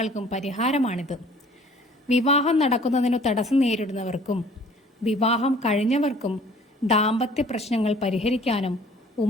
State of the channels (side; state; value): both; normal; correlation 0.53